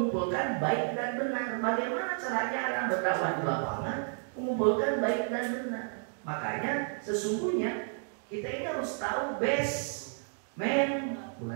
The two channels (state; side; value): silent; left; 57 dB below the other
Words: baik dan benar. Bagaimana caranya orang berdakwah di lapangan mengumpulkan baik dan benar? Makanya sesungguhnya kita ini harus tahu